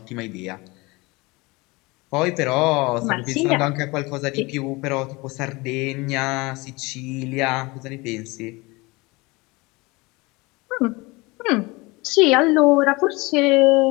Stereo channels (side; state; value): right; quieter; 24.2 dB